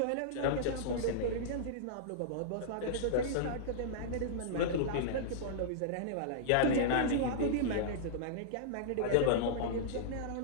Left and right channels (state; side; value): different; both; correlation -0.02